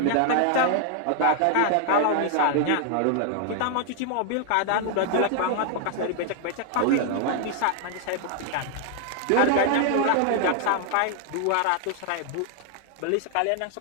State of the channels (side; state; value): both; different; correlation 0.00